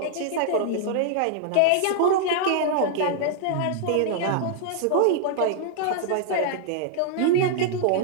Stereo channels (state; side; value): different; both; correlation -0.01